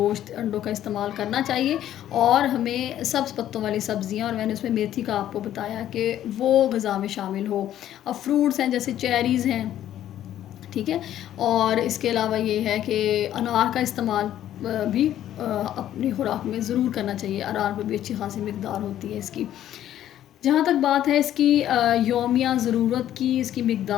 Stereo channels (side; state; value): right; quieter; 11.8 dB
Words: अंडों का इस्तेमाल करना चाहिए और हमें सब्ज़ पत्तों वाली सब्ज़ियाँ, और मैंने उसमें मेथी का आपको बताया कि वो ग़िज़ा में शामिल हो। अब फ्रूट्स हैं जैसे चेरीज़ हैं, ठीक है, और इसके अलावा ये है कि अनार का इस्तेमाल भी अपनी खुराक में ज़रूर करना चाहिए। अनार में भी अच्छी खासी मकदार होती है इसकी। जहाँ तक बात है इसकी यौमिया ज़रूरत की, इसकी